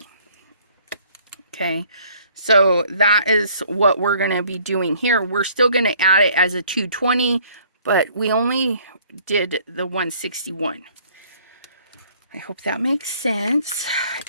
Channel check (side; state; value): both; inverted; correlation -0.59